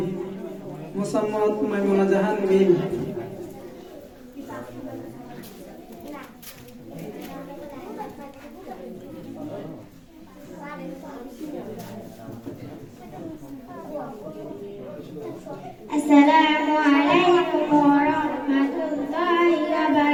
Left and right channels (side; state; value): both; identical; correlation 1.00